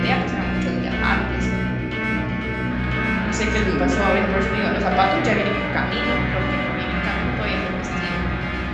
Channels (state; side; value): identical; both; correlation 1.00